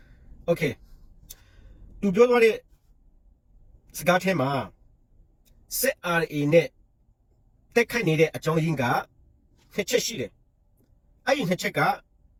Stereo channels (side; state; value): both; identical; correlation 1.00